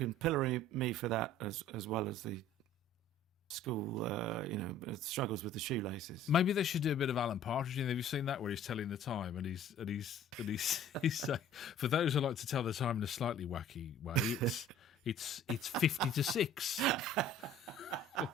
pillory me for that as well as the school, struggles with the shoelaces. Maybe they should do a bit of Alan Partridge. Have you seen that where he's telling the time and he's saying, for those who like to tell the time in a slightly wacky way, it's 50 to 6.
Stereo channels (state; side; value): normal; both; correlation 0.50